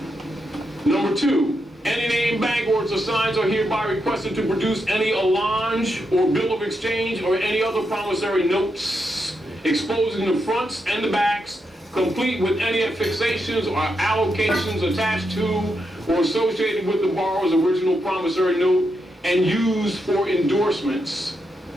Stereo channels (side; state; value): both; normal; correlation 0.83